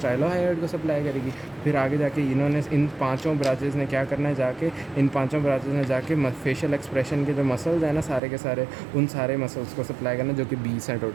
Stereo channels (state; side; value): drops out; left; at 8.2 s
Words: को सप्लाई करेगी। फिर आगे जाके इन्होंने इन 5 ब्रांचेज ने क्या करना है, जाके इन 5 ब्रांचेज ने जाके फेशियल एक्सप्रेशन के जो मसल्स हैं ना सारे के सारे, उन सारे मसल्स को सप्लाई करना जो कि 20 हैं